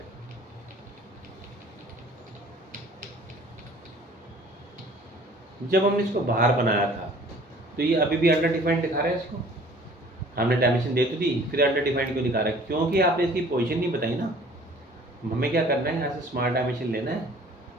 जब हमने इसको बाहर बनाया था तो ये अभी भी अंडर डिफाइंड दिखा रहा है इसको, हमने डायमेंशन दे तो दी, फिर अंडर डिफाइंड क्यों दिखा रहा है? क्योंकि आपने इसकी पोजीशन नहीं बताई ना। हमें क्या करना है, यहाँ से स्मार्ट डायमेंशन लेना है,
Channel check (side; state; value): both; normal; correlation 0.51